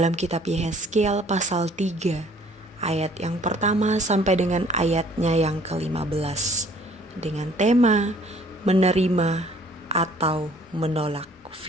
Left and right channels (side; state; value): both; normal; correlation 0.57